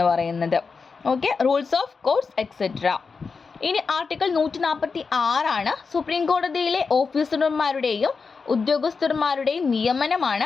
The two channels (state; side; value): quieter; right; 4.9 dB